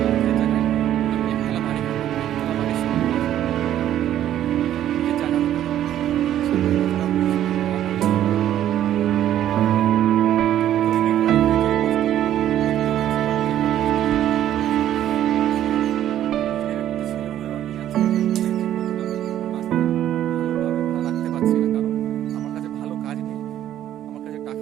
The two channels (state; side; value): quieter; left; 11.7 dB